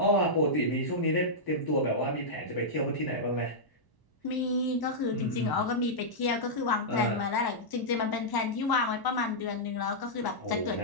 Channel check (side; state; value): right; late; 1.0 ms